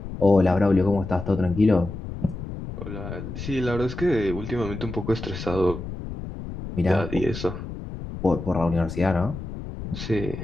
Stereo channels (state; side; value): noise; left; rumble, 9 dB below the sound